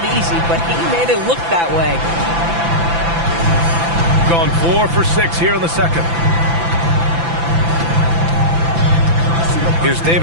easy, but he made it look that way. Gone 4 for 6 here in the second. Here's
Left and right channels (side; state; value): left; late; 5.9 ms